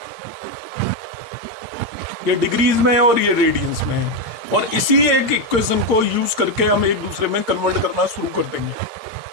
ये डिग्रीज में है और ये रेडियंस में है, और इसी एक इक्वेशन को यूज करके हम एक दूसरे में कन्वर्ट करना शुरू कर देंगे।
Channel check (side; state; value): left; late; 8.7 ms